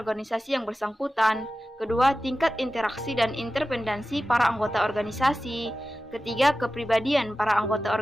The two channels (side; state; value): both; normal; correlation 0.94